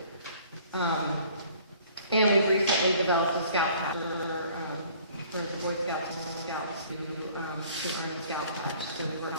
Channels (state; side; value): inverted; both; correlation -0.54